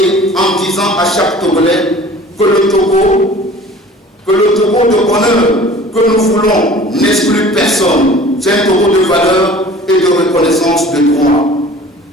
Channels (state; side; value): normal; both; correlation 0.45